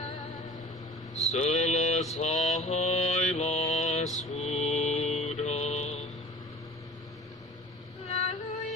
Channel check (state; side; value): normal; both; correlation 0.42